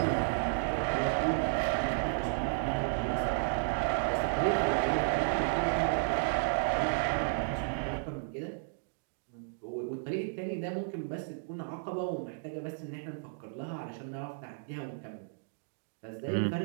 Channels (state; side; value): silent; left; digital silence